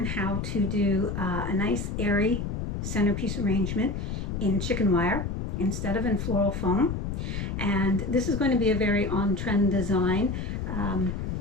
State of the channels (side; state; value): left; noise; rumble, 3 dB below the sound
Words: how to do a nice airy centerpiece arrangement in chicken wire instead of in floral foam. And this is going to be a very on-trend design